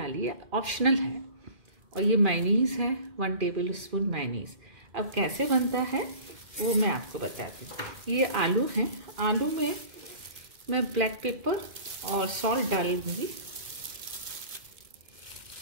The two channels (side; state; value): left; late; 2.1 ms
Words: है, ऑप्शनल है। और ये मायोनीज़ है, 1 टेबल स्पून मायोनीज़। अब कैसे बनता है वो मैं आपको बताती हूँ। ये आलू हैं, आलू में मैं ब्लैक पेपर और सॉल्ट डालूंगी।